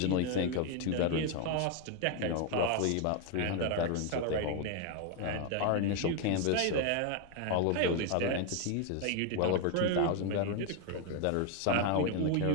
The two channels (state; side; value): different; both; correlation 0.01